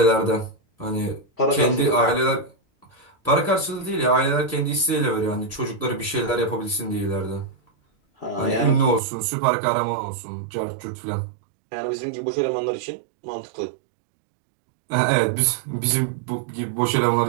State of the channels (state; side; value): drops out; left; at 9.0 s